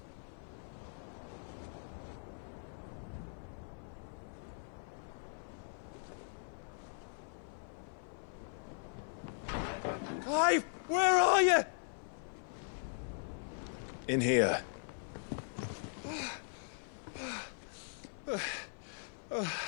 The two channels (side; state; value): right; silent; 52 dB below the other